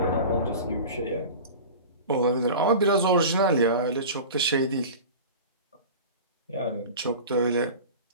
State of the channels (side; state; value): both; inverted; correlation -0.34